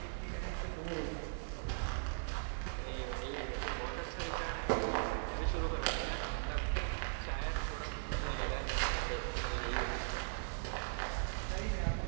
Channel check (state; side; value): silent; left; digital silence